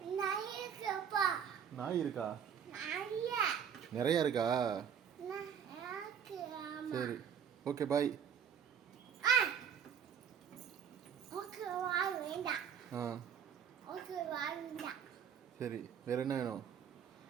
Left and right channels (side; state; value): left; quieter; 8.0 dB